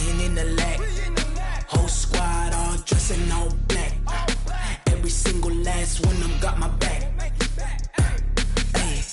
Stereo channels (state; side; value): identical; both; correlation 1.00